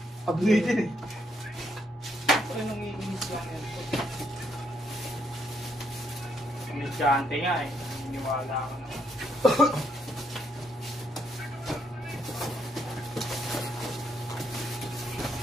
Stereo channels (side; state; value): both; normal; correlation 0.74